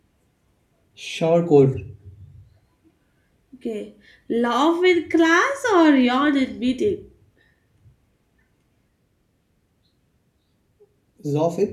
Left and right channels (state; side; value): identical; both; correlation 1.00